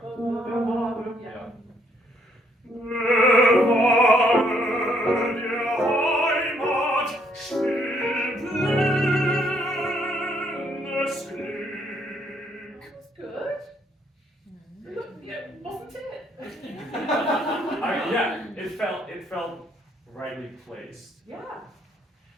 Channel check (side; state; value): both; normal; correlation 0.69